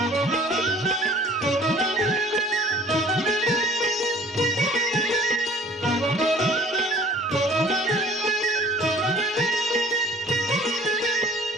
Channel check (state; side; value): normal; both; correlation 0.51